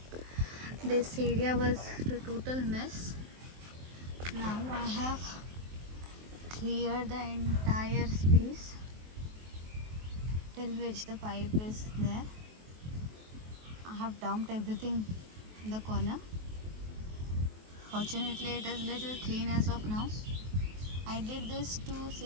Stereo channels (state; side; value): late; left; 23 ms